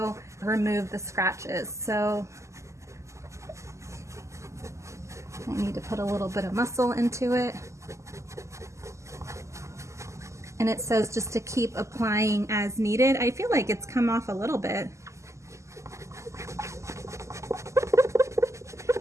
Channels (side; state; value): left; late; 0.14 ms